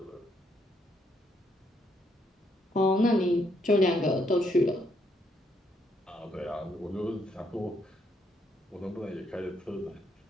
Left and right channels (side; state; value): both; normal; correlation 0.74